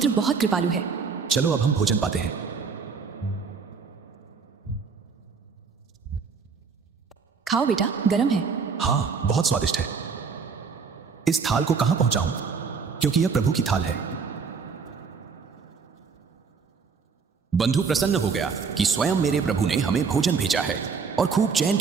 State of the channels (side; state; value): left; quieter; 5.4 dB